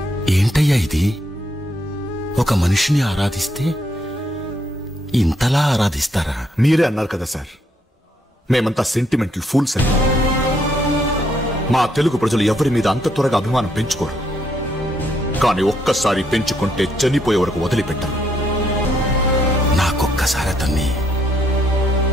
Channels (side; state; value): both; normal; correlation 0.73